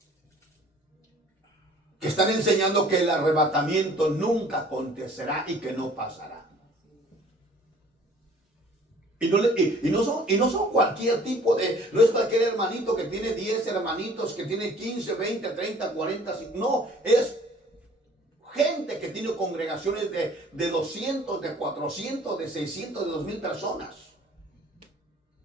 que están enseñando que el arrebatamiento nunca acontecerá y que no pasará. Y no son cualquier tipo de, no es cualquier hermanito que tiene 10 hermanitos, que tiene 15, 20, 30, 40, no, es gente que tiene congregaciones de 200, de 400, de 600, de 2000 personas.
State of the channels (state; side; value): normal; both; correlation 0.53